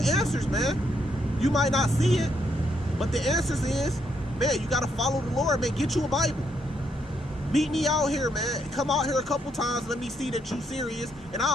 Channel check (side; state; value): both; normal; correlation 0.75